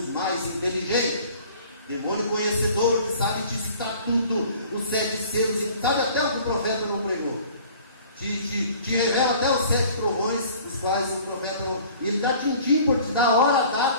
mais inteligentes. Demônio conhecedor, que sabe digitar tudo, os 7 selos, sabe até o que o profeta não pregou. Te revela até os 7 trovões, os quais o profeta não. Ele dá tintim por te dar a hora, a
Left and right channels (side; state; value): both; inverted; correlation -0.50